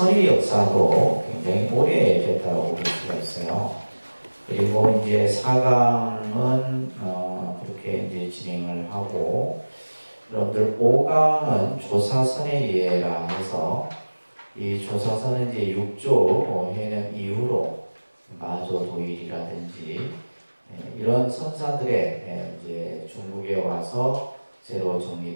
역사도 굉장히 오래됐다고 볼 수가 있어요. 그리고 이제 4강은 그렇게 이제 진행을 하고, 여러분들 5강은 조사선의 예라 해서 이 조사선은 이제 6조 해명 이후로 마조 도일이라든지 이런 선사들의 이제 중국에 와서 새로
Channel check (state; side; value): inverted; both; correlation -1.00